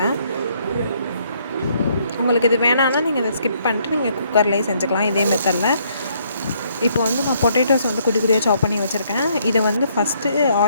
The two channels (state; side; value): inverted; both; correlation -0.69